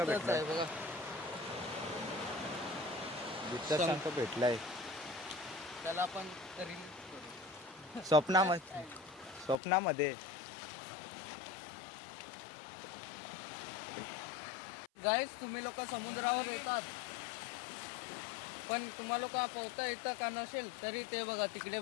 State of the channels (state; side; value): drops out; right; at 9.6 s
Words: भेटलाय बघा, जिथं शंख भेटलाय. त्याला आपण रील स्वप्नामध्ये गाईस, तुम्ही लोक समुद्रावर येतात, पण तुम्हाला लोक पोहता येतं का नसेल तरी ते बघा तिकडे